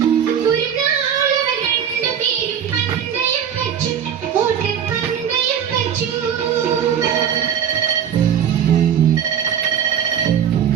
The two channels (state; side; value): quieter; left; 8.7 dB